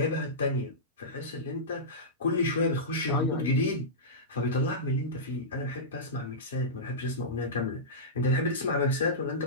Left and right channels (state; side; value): normal; both; correlation -0.15